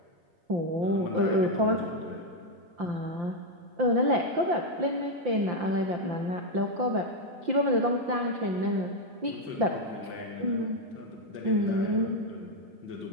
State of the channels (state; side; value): late; left; 5.8 ms